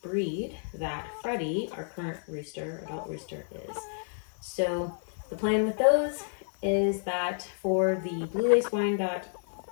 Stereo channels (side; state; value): right; silent; digital silence